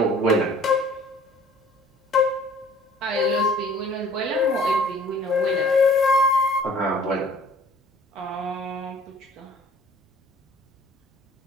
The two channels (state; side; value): normal; both; correlation 0.53